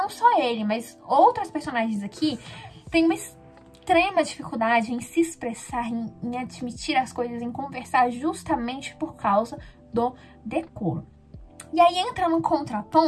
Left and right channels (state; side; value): identical; both; correlation 1.00